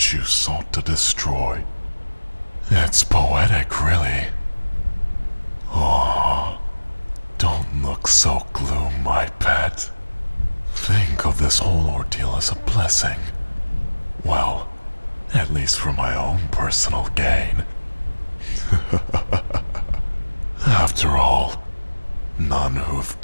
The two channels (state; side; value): inverted; both; correlation -1.00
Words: you sought to destroy. It's poetic, really. Oh, don't look so gloom, my pet. Think of this whole ordeal as a blessing. Well, at least for my own personal gain. After all, none who've